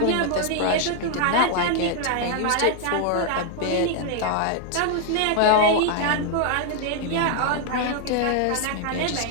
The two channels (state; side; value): different; both; correlation 0.00